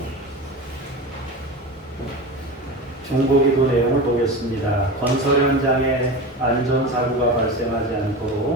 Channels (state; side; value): normal; both; correlation 0.27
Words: 중보기도 내용을 보겠습니다. 건설 현장에 안전사고가 발생하지